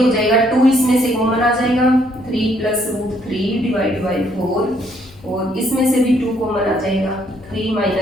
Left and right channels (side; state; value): both; normal; correlation 0.68